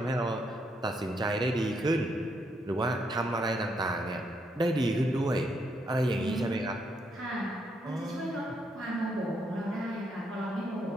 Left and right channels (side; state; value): both; normal; correlation 0.77